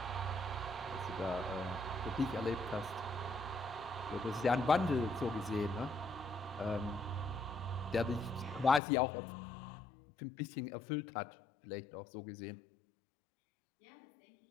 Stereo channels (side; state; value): right; drops out; at 8.8 s